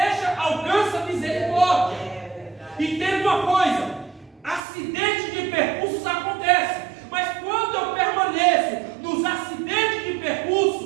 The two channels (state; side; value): drops out; left; at 4.6 s